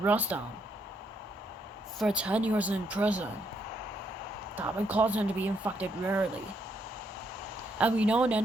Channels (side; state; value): both; normal; correlation 0.75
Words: them for 10 years in prison. That would cause them to be infected rarely. And we know